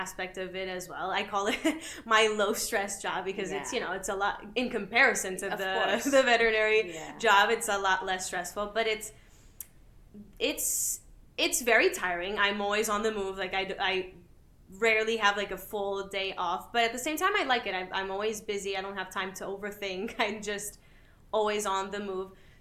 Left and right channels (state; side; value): identical; both; correlation 1.00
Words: of it as well. I call it my low stress job, because it's a lot in comparison to the veterinary job. It's a lot less stressful, but it's very tiring. I'm always on the move. Like I rarely have like a full day off, but at the same time I like it. I'm always busy. I don't have time to overthink. I'm just always on the move.